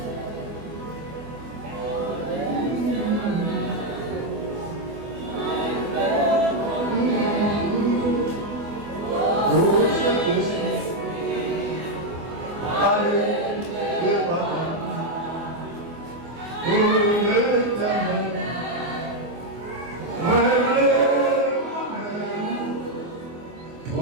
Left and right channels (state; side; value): late; left; 24 ms